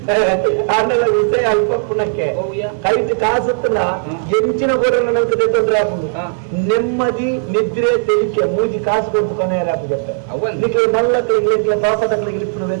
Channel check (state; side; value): silent; left; 56 dB below the other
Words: ಆಮೇಲೆ ವಿಷಯ ಅಲ್ಪ ಪುನಕ್ಕೆ ಕೈಟ್ ಕಾಸುತ್ತಲ್ಲ ಎಂಚಿನ ಗೋಡಲ್ಲ ನಂತರ ತೊಂದರೆ ಹಾಕುದು ನೆಮ್ಮದಿ ನಿದ್ರೆ ತೆಲಿಕೆ ಮೂಜಿ ಕಾಸು ಕೊಟ್ಟು ಕೊನೆ ಹಾಕುತ್ತೆ ನಿಕ್ಲೆ ಮಲ್ಲಕ್ಳಿಗೆ ಪಾಪದಗಳಿಗೆ ಪುನಃ